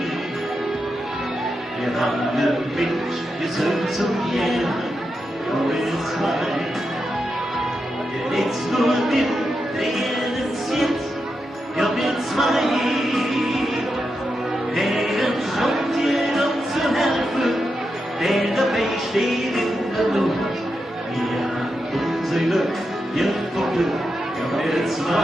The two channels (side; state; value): both; normal; correlation 0.87